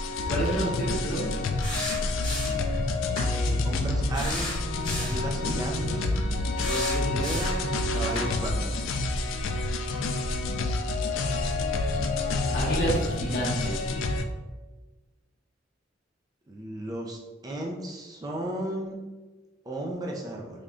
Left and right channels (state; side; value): normal; both; correlation 0.57